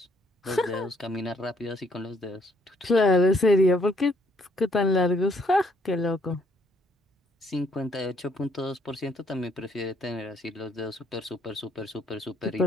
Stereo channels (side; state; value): both; normal; correlation 0.67